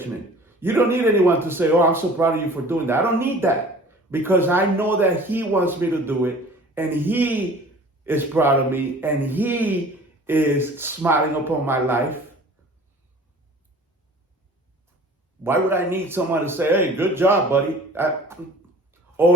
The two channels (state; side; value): normal; both; correlation 0.45